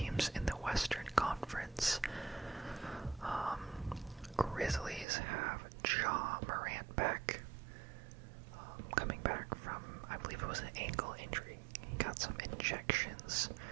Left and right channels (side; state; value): left; drops out; at 5.1 s